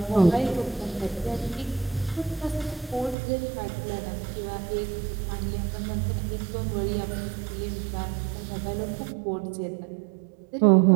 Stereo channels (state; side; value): drops out; left; at 3.2 s